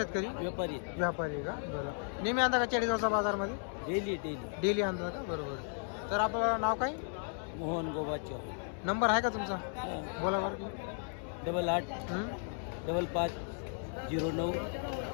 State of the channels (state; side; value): silent; right; 54 dB below the other